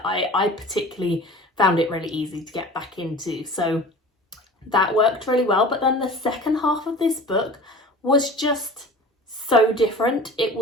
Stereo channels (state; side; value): normal; both; correlation 0.40